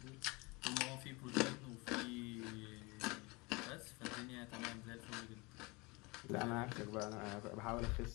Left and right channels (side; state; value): right; quieter; 26.1 dB